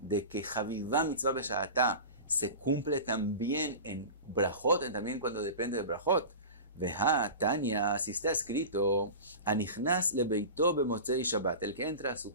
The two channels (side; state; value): both; inverted; correlation -0.32